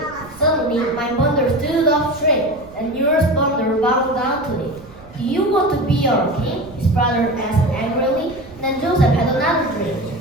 suddenly my bundle stood up straight, and yours bundle bowed down to it. Do you want to be our king? His brother asked angrily. Then Joseph had another dream.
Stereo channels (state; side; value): noise; right; rumble, 22 dB below the sound